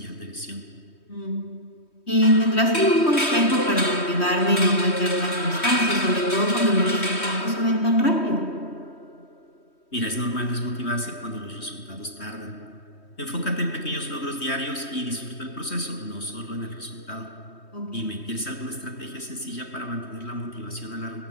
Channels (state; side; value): late; right; 3.1 ms